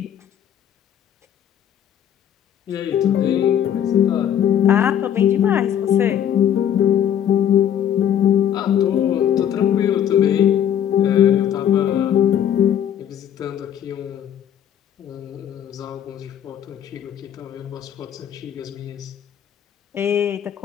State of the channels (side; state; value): right; quieter; 9.7 dB